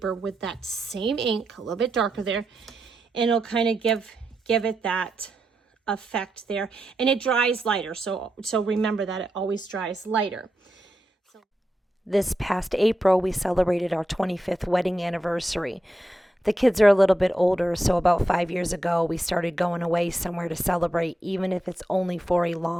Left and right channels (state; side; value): normal; both; correlation 0.86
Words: with that same ink, a little bit darker there, and it'll kind of give it that effect there. And it dries lighter, so remember that it always dries lighter. This past April, we celebrated our 25th wedding anniversary. The kids are a little bit older, so about 5 years ago, we started going away somewhere to celebrate, even if it's only for a